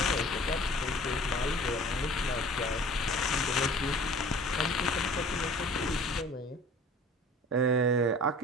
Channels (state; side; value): normal; both; correlation 0.46